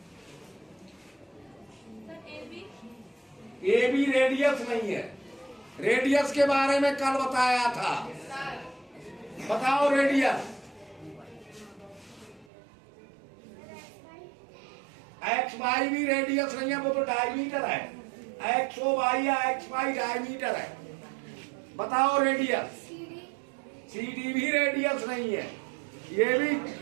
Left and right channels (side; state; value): left; drops out; at 12.5 s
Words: ए बी रेडियस नहीं है। रेडियस के बारे में कल बताया था। बताओ रेडियस। एक्स वाई भी रेडियस नहीं है, वो तो डायमीटर है। एक्स ओ वाई या एक्स वाई डायमीटर है। बताओ रेडियस। सी डी भी रेडियस नहीं है, ये भी